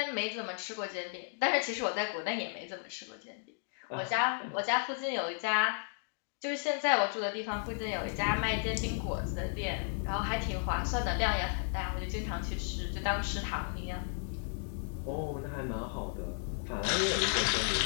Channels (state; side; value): silent; right; 55 dB below the other